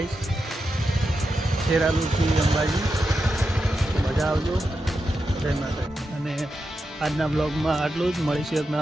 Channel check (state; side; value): normal; both; correlation 0.88